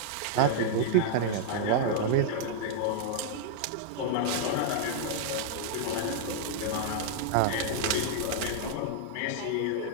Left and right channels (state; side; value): different; both; correlation -0.01